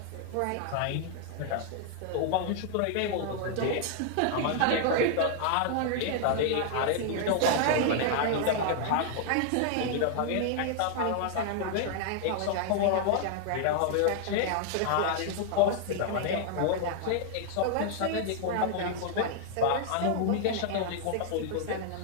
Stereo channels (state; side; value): different; both; correlation -0.01